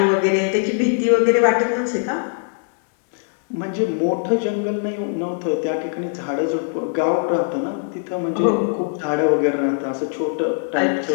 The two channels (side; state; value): right; silent; digital silence